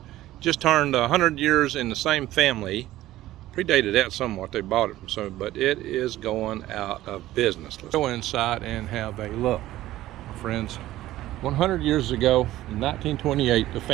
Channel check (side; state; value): left; quieter; 15.2 dB